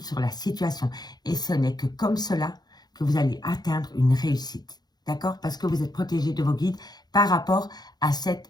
sur la situation. Et ce n'est que comme cela que vous allez atteindre une réussite. D'accord? Parce que vous êtes protégé de vos guides par rapport à cette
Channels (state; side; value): late; right; 0.19 ms